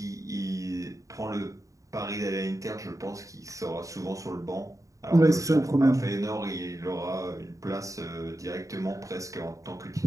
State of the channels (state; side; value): late; left; 0.16 ms